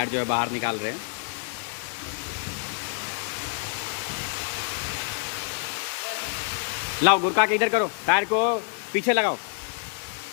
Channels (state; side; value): silent; right; 60 dB below the other